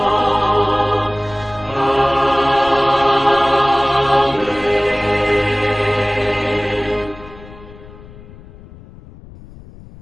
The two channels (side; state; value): left; noise; rumble, 19 dB below the sound